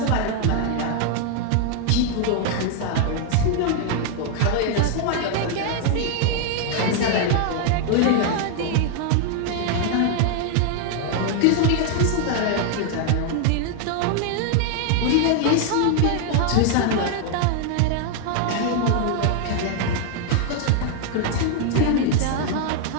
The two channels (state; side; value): different; both; correlation 0.00